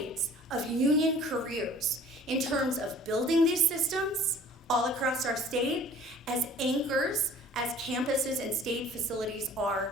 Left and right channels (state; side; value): normal; both; correlation 0.50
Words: of union careers in terms of building these systems all across our state as anchors, as campuses and state facilities